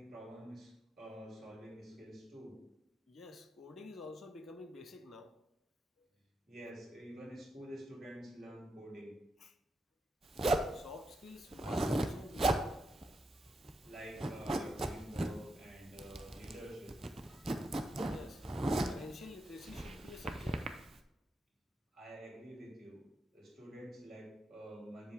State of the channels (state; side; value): normal; both; correlation 0.83